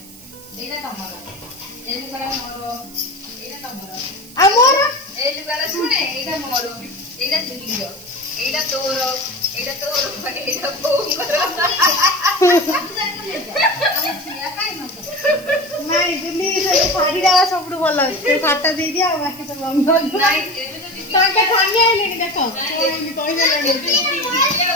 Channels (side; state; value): right; noise; hiss, 20 dB below the sound